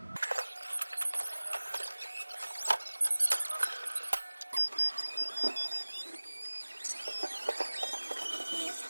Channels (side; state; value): both; inverted; correlation -1.00